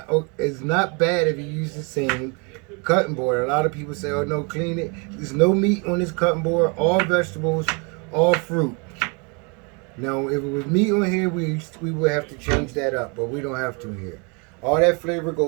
it's not bad if you use the same cutting board. A lot of people say, oh no, clean it. There's no meat on this cutting board, all vegetables, all fruit. Now, if it was meat on here, we would have to change that up, but we don't have to here. All that flavor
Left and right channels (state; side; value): quieter; left; 32.9 dB